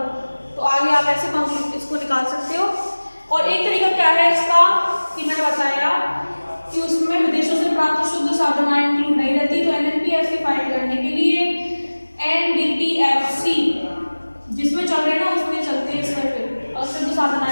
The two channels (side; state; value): both; inverted; correlation -1.00